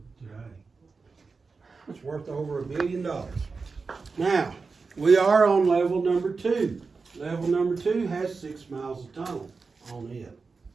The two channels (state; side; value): quieter; left; 4.5 dB